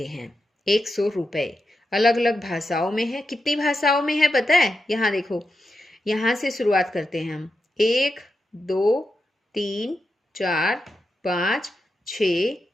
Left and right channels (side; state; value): both; normal; correlation 0.88